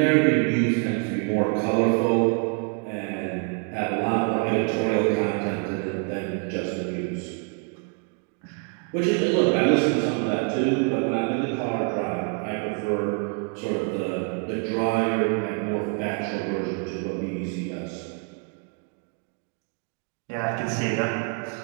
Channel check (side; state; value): left; quieter; 38.1 dB